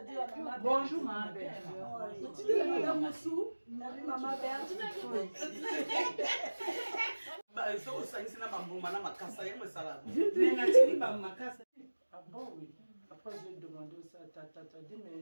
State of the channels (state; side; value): inverted; both; correlation -1.00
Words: dire à maman? Bonjour, maman Berthe. Tu dis à madame Moussou, maman Berthe. Ah bon, oui. Après, j'ai demandé aussi à Tata, dit,